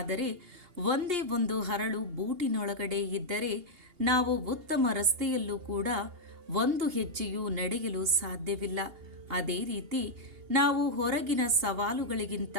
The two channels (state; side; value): late; left; 2.8 ms